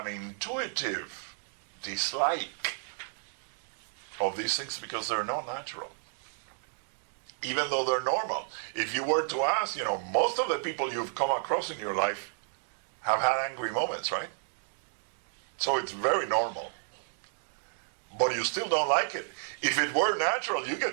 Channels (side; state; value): left; silent; digital silence